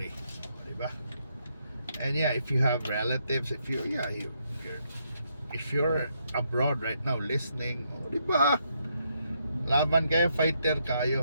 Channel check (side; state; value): both; inverted; correlation -0.76